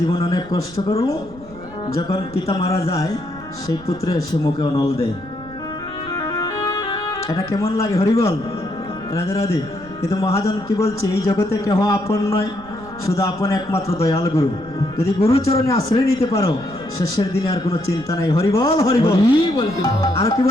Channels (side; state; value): right; noise; rumble, 19 dB below the sound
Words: জীবন অনেক কষ্ট করলো, যখন পিতা মারা যায় সেই পুত্র এসে মুখে অনল দেয়। এটা কেমন লাগে? হরি বল, রাধে রাধে। কিন্তু মহাজন কি বলছে? এই জগতে কেহ আপন নয়, শুধু আপন একমাত্র দয়াল গুরু। যদি গুরুচরণে আশ্রয় নিতে পারো, শেষের দিনে আর কোনো চিন্তা নাই। হরি বল, হরি বল। আর কি